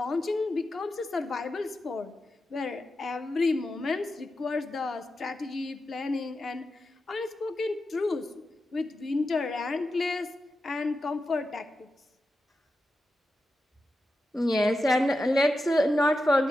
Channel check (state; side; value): normal; both; correlation 0.90